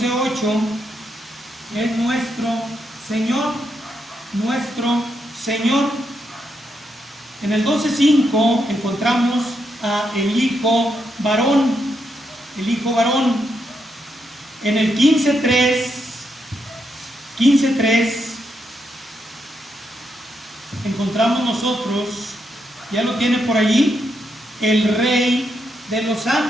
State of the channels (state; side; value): normal; both; correlation 0.81